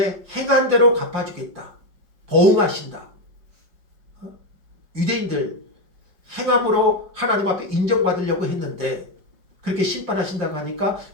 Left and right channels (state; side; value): late; left; 5.3 ms